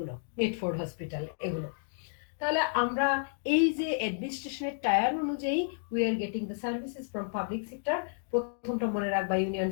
মিডফোর্ড হসপিটাল, এগুলো। তাহলে আমরা এই যে অ্যাডমিনিস্ট্রেশনের টায়ার অনুযায়ী we are getting the services from public sector. প্রথমটা মনে রাখবা, ইউনিয়ন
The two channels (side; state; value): right; silent; digital silence